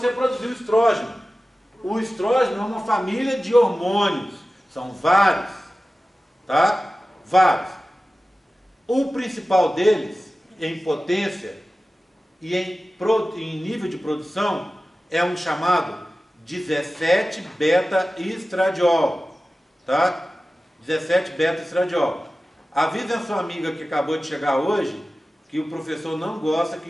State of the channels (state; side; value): normal; both; correlation 0.95